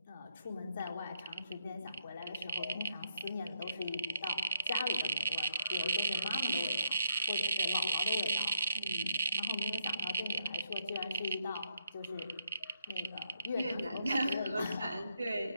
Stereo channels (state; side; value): inverted; both; correlation -0.75